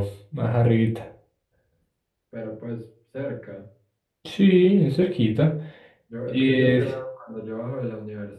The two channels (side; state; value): both; identical; correlation 1.00